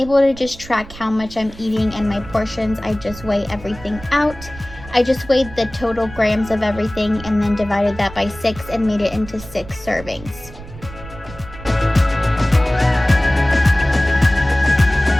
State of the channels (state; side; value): noise; right; rumble, 16 dB below the sound